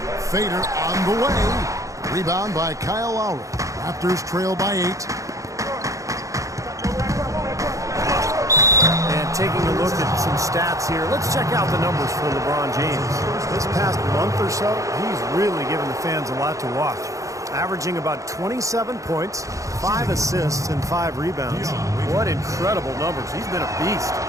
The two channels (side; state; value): left; late; 0.16 ms